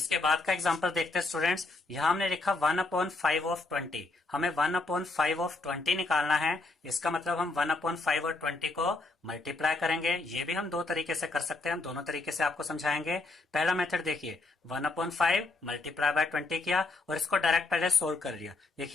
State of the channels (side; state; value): right; quieter; 3.4 dB